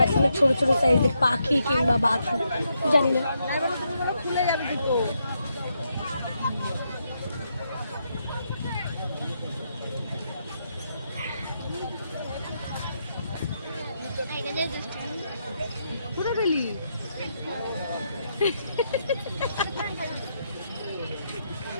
ছোট ছোট সাইজের পাখি কিংবা বাঘ জানি না। কোথায় গেলি?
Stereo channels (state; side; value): inverted; both; correlation -0.80